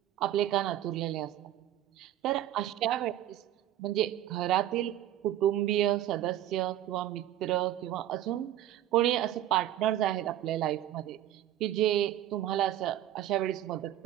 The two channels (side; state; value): left; quieter; 12.5 dB